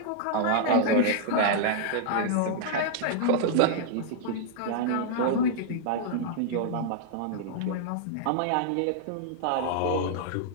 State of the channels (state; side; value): different; both; correlation -0.01